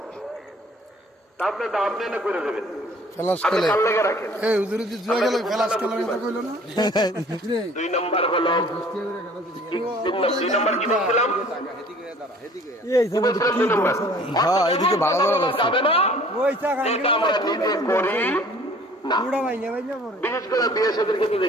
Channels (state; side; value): normal; both; correlation 0.52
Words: আপনি তো আপনি না করে দেবেন। দুই নম্বর হলো, দুই নম্বর কি বলছিলাম? এদিকে ভালো যাবে না, এটা আমরা নিজে করি না। বিশেষ করে বিয়ে সাথে ক্ষেত্রে